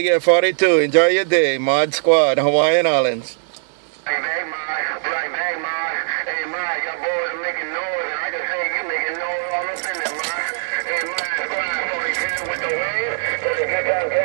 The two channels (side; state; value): left; silent; 66 dB below the other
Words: care, 42. Enjoy your day. Mod Squad, Hawaiian Islands. Right back, Mod. Right back, Mod. Hey, Mod, your boys are making noise, and I can say you making noise all up in there, Mod. Hey, Mod Squad 42 with the wave. Let me get that